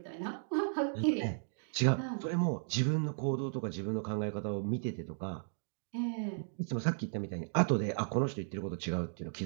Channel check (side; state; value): left; silent; digital silence